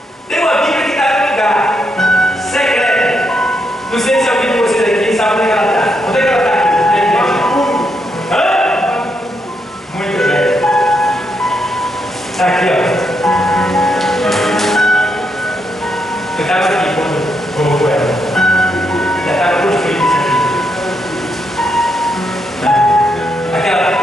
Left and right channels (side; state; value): both; normal; correlation 0.79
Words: tem uma Bíblia que está no lugar secreta. Não sei se alguém de vocês aqui sabe onde é que ela está. Onde é que ela está aqui? Hã? Muito bem. Está aqui, ó. Eu estava aqui quando colocou ela. Já estava construído isso aqui. Aquela